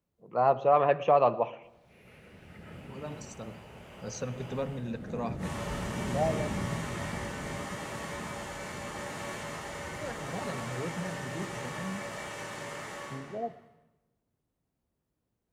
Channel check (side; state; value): both; identical; correlation 1.00